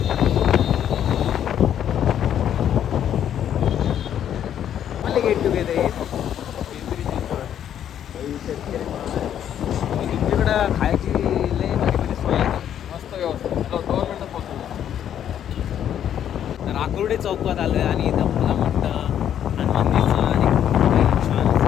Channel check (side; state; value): right; quieter; 9.9 dB